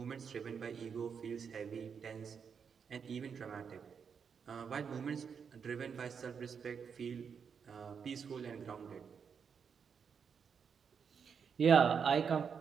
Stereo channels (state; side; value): quieter; left; 6.6 dB